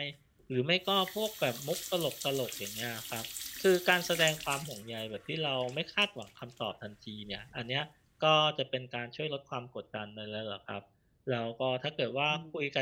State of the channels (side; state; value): both; identical; correlation 1.00